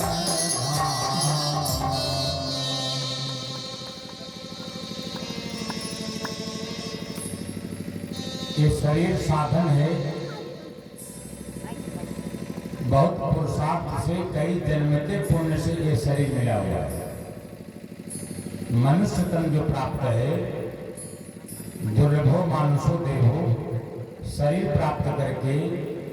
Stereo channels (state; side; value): identical; both; correlation 1.00